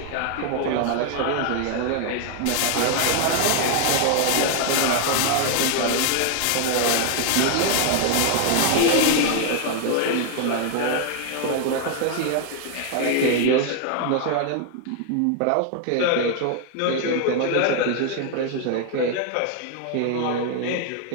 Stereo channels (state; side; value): different; both; correlation 0.00